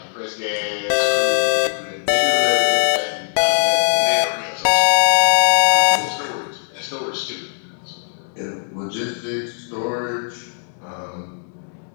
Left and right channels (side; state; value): right; silent; digital silence